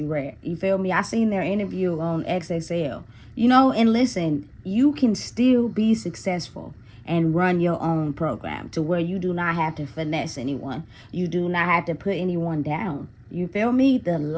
Red. You feel me? I seen their interview on XXL. You know, and listen, you can still be successful and run your own program to where you do not have to finesse anyone. You do not have to put anyone down. You feel me? The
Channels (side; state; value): both; identical; correlation 1.00